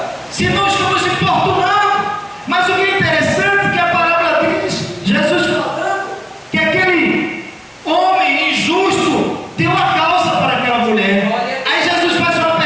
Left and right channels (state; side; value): identical; both; correlation 1.00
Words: Se não estamos importunando. Mas o que é interessante é que a palavra diz, Jesus falando, que aquele homem injusto deu a causa para aquela mulher. Aí Jesus faz uma